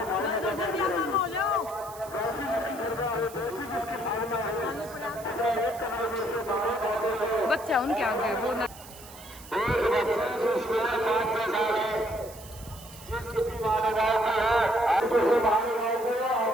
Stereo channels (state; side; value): noise; right; hiss, 18 dB below the sound